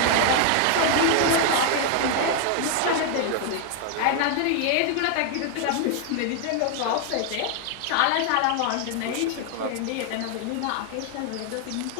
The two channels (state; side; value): different; both; correlation 0.00